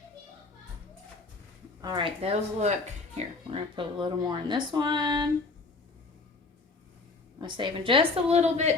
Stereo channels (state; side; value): quieter; right; 3.7 dB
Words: All right, those look, here, we're gonna put a little more in this one. I'm saving just a little